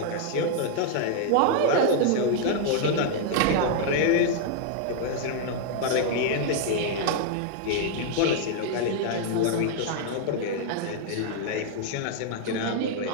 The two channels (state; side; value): different; both; correlation 0.00